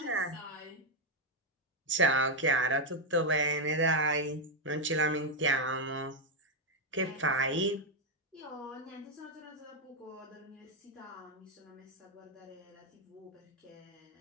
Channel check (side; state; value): both; normal; correlation 0.03